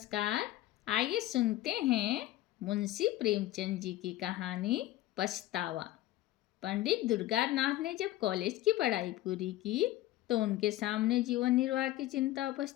आइए सुनते हैं मुंशी प्रेमचंद जी की कहानी पछतावा। पंडित दुर्गानाथ ने जब कॉलेज की पढ़ाई पूरी की तो उनके सामने जीवन निर्वाह की चिंता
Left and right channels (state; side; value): quieter; right; 15.6 dB